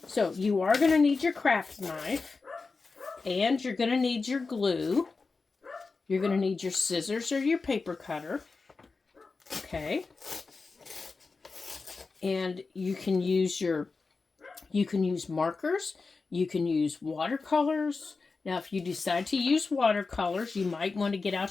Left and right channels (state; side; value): quieter; right; 4.2 dB